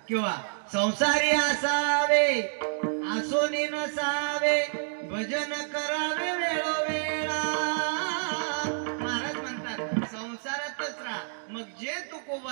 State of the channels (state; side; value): silent; left; digital silence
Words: किंवा संसारी असावे आसोनी नसावे भजन करावे वेळोवेळा. महाराज म्हणतात संसारातच राहा. मग जे